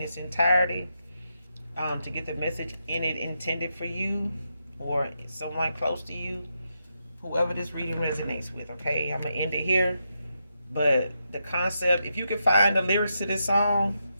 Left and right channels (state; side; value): inverted; both; correlation -0.84